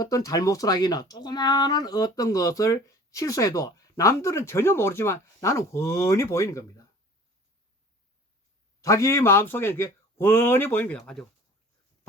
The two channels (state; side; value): normal; both; correlation 0.47